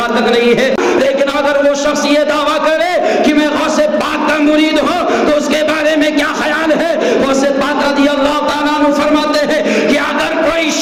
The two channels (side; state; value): both; identical; correlation 1.00